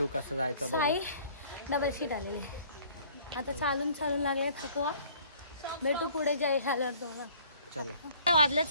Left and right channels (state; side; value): inverted; both; correlation -0.55